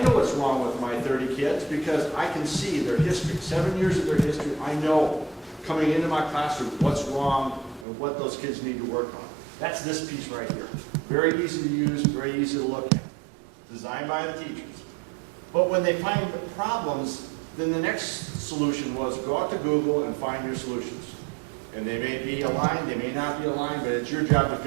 what's wrong with my 30 kids because I can see their history, 7 years of their history. I know coming into my classroom what's wrong and what those kids need to work on. That's this piece right here. Very easy to use, very easy to look at. Designed by the teachers. But when they find the problems, then the next solution was go out to Google and find your solutions. And they may be aligned, they may not be aligned, but it's your job to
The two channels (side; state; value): left; drops out; at 7.9 s